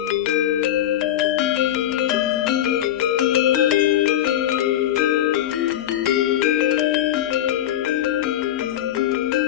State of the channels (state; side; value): quieter; right; 11.9 dB